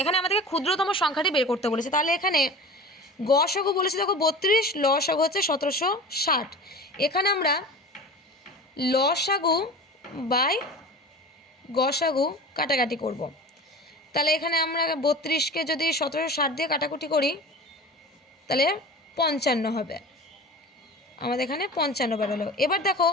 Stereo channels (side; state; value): both; normal; correlation 0.35